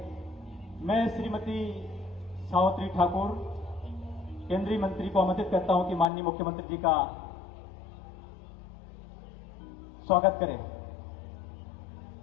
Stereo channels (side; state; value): right; drops out; at 6.1 s